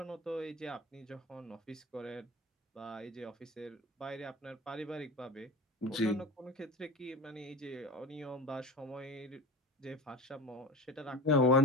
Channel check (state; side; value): normal; both; correlation 0.31